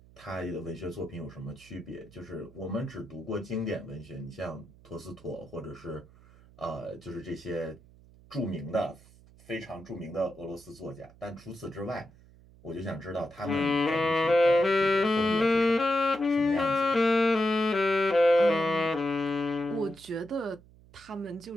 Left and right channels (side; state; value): right; noise; hum, 25 dB below the sound